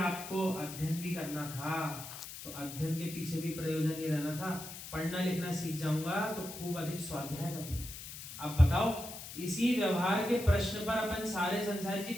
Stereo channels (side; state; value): left; noise; hiss, 11 dB below the sound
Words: अध्ययन भी करना था तो अध्ययन के पीछे भी प्रयोजन ही रहना था। पढ़ना लिखना सीख जाऊंगा तो खूब अधिक स्वाध्याय करूंगा। अब बताओ, इसी व्यवहार के प्रश्न पर अपन सारे संसारी जी